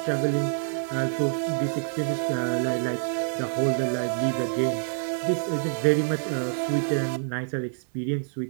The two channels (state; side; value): silent; left; digital silence